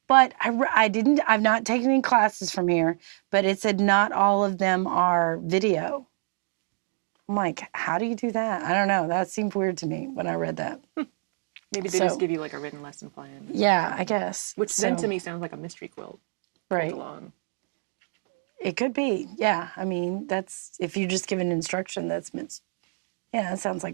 But I've not taken any classes from here, but it said not all of them are video. I'm like, how do you do that? I don't know. That seemed weird to me when I read that. Maybe they just give you like a written lesson plan. Yeah, I guess. Which then to me sounds like a mystery quilt. Quilt along. It could be. Yeah. I mean, that's, if you're just given instruction, that sounds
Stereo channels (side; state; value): left; silent; 61 dB below the other